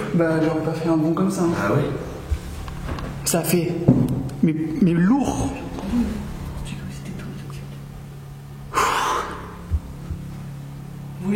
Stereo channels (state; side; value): identical; both; correlation 1.00